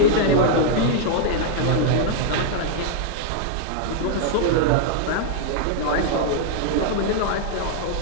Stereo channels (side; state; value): both; different; correlation -0.01